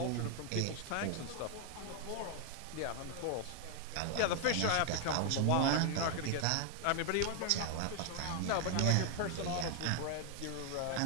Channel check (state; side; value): different; both; correlation 0.00